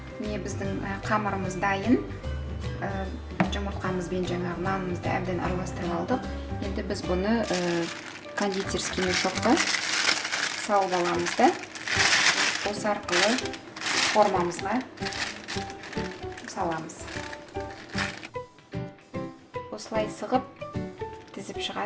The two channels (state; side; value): identical; both; correlation 1.00